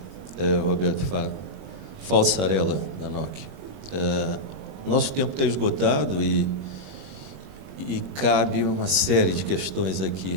Roberto Falsarella, da Nokia. Nosso tempo está esgotado e cabe uma série de questões aqui,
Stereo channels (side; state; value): left; late; 21 ms